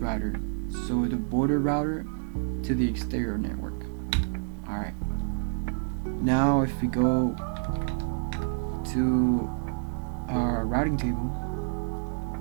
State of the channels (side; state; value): left; silent; digital silence